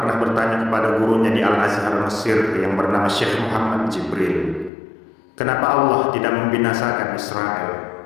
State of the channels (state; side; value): drops out; right; at 4.7 s